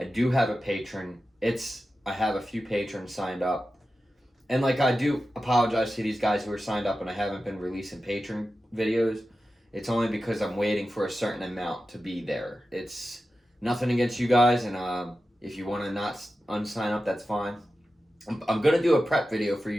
do have a patron. I have a few patrons signed up. And I do apologize to these guys who are signed up and I haven't been releasing patron videos. It's only because I'm waiting for a certain amount to be there. It's nothing against you guys, and if you want to not unsign up, that's fine. I'm going to do a prep video for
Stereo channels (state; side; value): normal; both; correlation 0.93